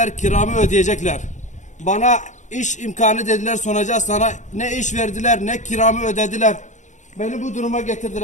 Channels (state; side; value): late; right; 0.35 ms